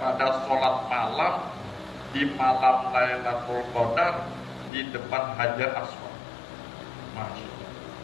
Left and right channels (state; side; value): drops out; right; at 4.7 s